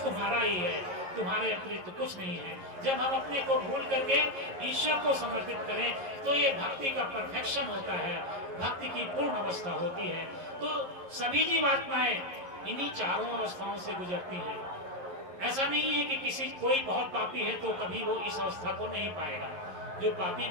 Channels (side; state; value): left; late; 11 ms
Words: तुम्हारा ही है, तुम्हारे अतिरिक्त तो कुछ नहीं है। जब हम अपने को भूल करके ईश्वर को समर्पित करें तो ये भक्ति का परफेक्शन होता है, भक्ति की पूर्ण अवस्था होती है। तो सभी जीवात्माएं इन्हीं चारों अवस्थाओं से गुजरती हैं। ऐसा नहीं है कि किसी कोई बहुत पापी है तो कभी वो इस अवस्था को नहीं पाएगा। जो पापी